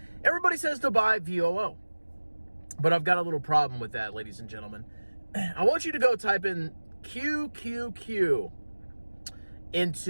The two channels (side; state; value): both; inverted; correlation -1.00